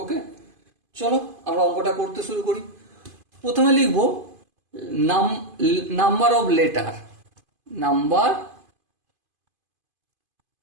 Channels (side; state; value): left; late; 2.5 ms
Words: ওকে, চলো আমরা অঙ্কটা করতে শুরু করি। প্রথমে লিখব number of letter, number